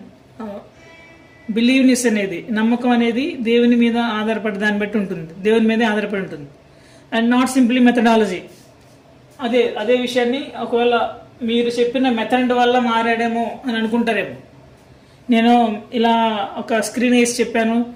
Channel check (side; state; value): both; identical; correlation 1.00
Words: బిలీవ్నెస్ అనేది, నమ్మకం అనేది దేవుని మీద ఆధారపడి దాన్ని బట్టి ఉంటుంది, దేవుని మీదే ఆధారపడి ఉంటుంది. And not simply methodology. అదే విషయాన్ని ఒకవేళ మీరు చెప్పిన మెథడ్ వల్ల మారాడేమో అని అనుకుంటారేమో. నేను ఇలా ఒక స్క్రీన్ వేసి చెప్పాను,